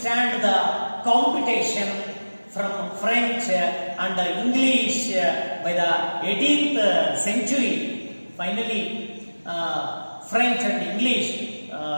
the competition from French and English by the 18th century. Finally, French and English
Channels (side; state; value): both; inverted; correlation -1.00